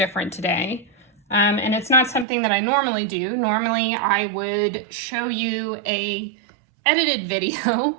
today. And it's not something that I normally do. Normally I would show you a edited video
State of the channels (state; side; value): drops out; left; at 2.2 s